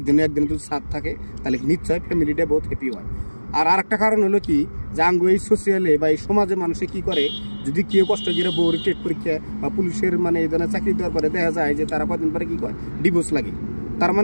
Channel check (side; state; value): both; inverted; correlation -1.00